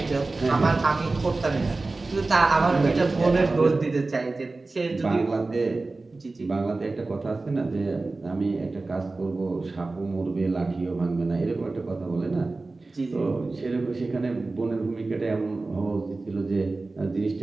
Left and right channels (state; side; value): quieter; left; 3.4 dB